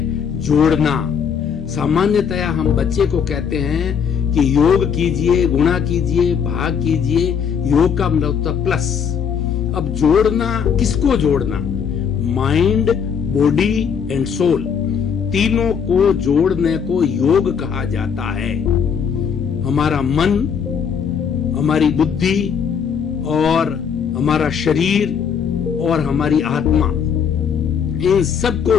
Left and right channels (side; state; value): right; quieter; 7.1 dB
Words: जोड़ना। सामान्यतया हम बच्चे को कहते हैं कि योग कीजिए, गुणा कीजिए, भाग कीजिए। योग का मतलब होता है प्लस। अब जोड़ना, किसको जोड़ना? माइंड, बॉडी एंड सोल, तीनों को जोड़ने को योग कहा जाता है। हमारा मन, हमारी बुद्धि और हमारा शरीर और हमारी आत्मा, इन सबको